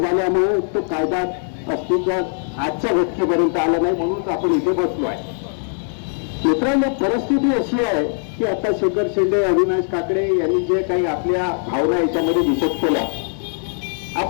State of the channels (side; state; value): right; silent; 66 dB below the other